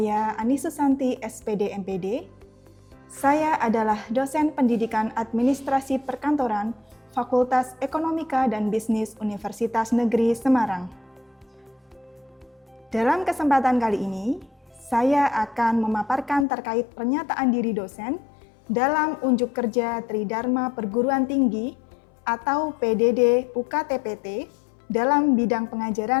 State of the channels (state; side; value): drops out; right; at 16.4 s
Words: Ani Susanti, SPD MPD. Saya adalah dosen pendidikan administrasi perkantoran Fakultas Ekonomika dan Bisnis Universitas Negeri Semarang. Dalam kesempatan kali ini, saya akan memaparkan terkait pernyataan diri dosen dalam unjuk kerja Tridharma Perguruan Tinggi atau PDD UKT-PT dalam bidang